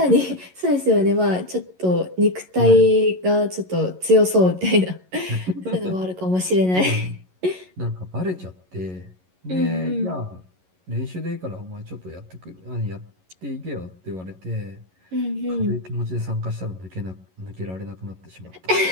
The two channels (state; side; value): late; left; 11 ms